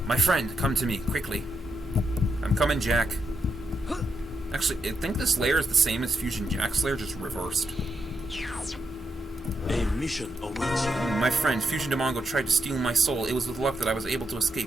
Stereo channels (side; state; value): both; normal; correlation 0.82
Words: My friend, come to me, quickly. I'm coming, Jack. Actually, I think this lair is the same as Fusion Jack's lair, just reversed. A mission awaits you. My friend, Fusion Demongo tried to steal my soul. It was with luck that I was able to